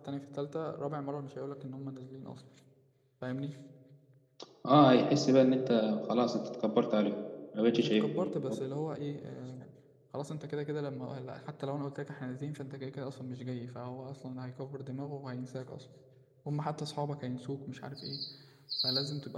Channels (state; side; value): identical; both; correlation 1.00